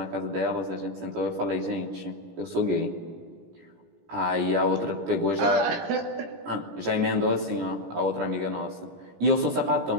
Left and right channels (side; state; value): left; late; 17 ms